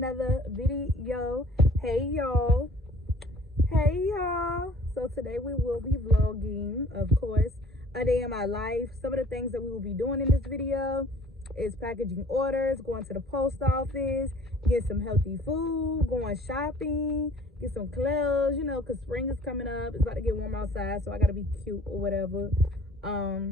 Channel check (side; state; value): both; normal; correlation 0.52